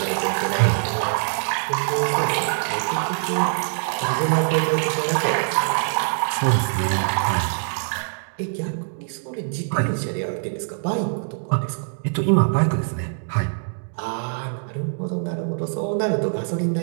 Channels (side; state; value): left; silent; digital silence